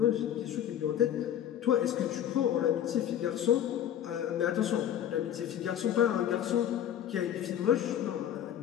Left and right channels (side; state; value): right; quieter; 10.4 dB